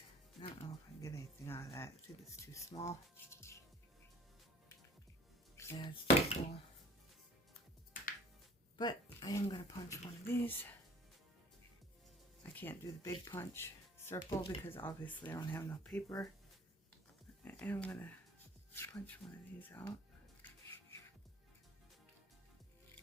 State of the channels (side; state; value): both; normal; correlation 0.50